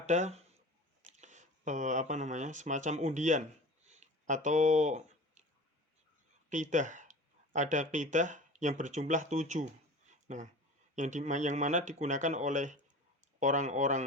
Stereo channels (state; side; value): normal; both; correlation 0.37